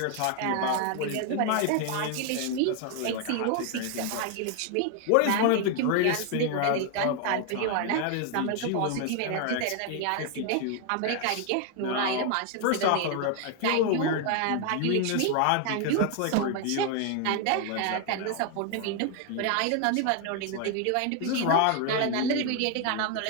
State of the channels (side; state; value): both; different; correlation 0.00